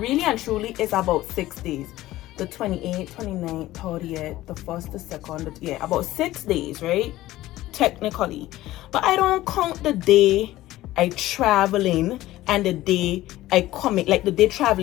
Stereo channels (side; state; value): right; quieter; 16.0 dB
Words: and truly, it's about 6 days. The 28th, 29th, 30th, the 1st, the 2nd, yeah, about 6 days, right? Technically. But I don't count the day I traveling and the day I coming, like the day